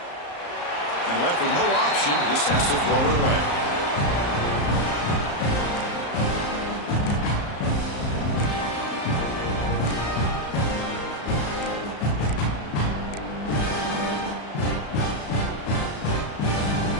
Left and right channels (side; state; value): right; late; 34 ms